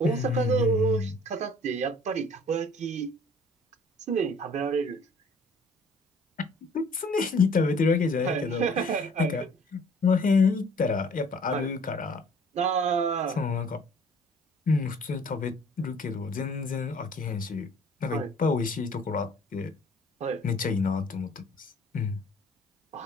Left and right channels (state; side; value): normal; both; correlation 0.54